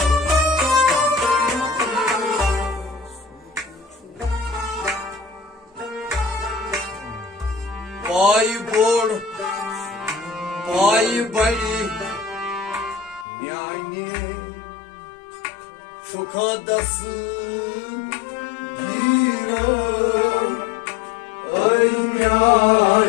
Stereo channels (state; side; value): drops out; right; at 13.2 s